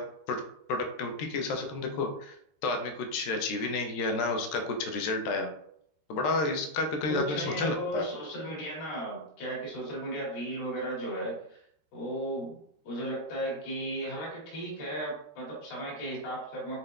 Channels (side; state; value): right; late; 13 ms